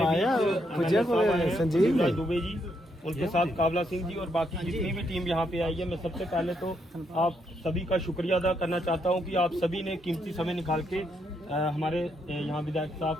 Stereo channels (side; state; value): both; normal; correlation 0.77